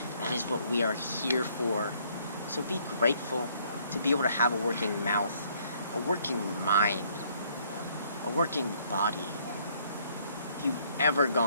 That is what we are here for. So be grateful to be able to have a working mouth, a working mind, a working body. If you've ever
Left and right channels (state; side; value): inverted; both; correlation -0.65